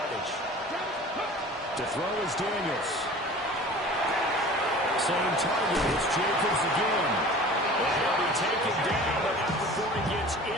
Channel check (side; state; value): both; normal; correlation 0.42